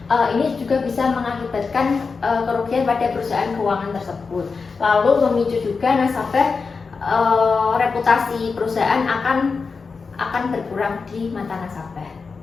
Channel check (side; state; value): right; quieter; 4.8 dB